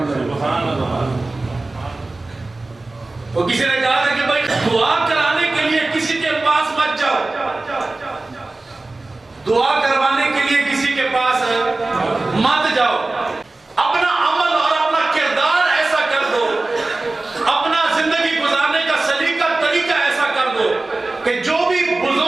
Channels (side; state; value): left; quieter; 3.1 dB